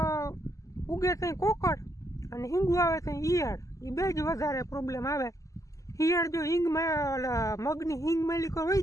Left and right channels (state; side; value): late; right; 0.16 ms